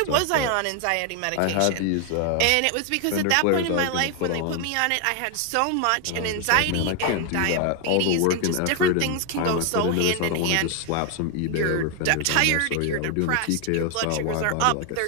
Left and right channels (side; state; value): both; different; correlation 0.00